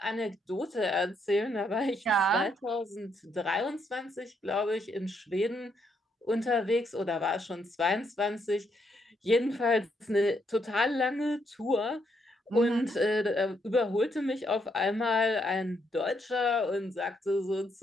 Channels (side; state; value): both; normal; correlation 0.75